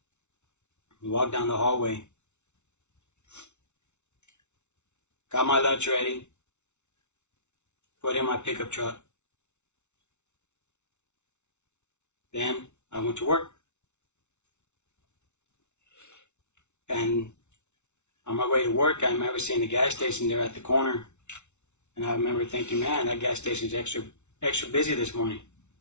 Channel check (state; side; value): late; right; 0.82 ms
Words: We walked down the hallway. Got my lunch ready. Put in my pickup truck. Then I went to work. And on my way to work, I remember seeing the gas station there at the corner. And I remember thinking, man, that gas station's extra busy this morning.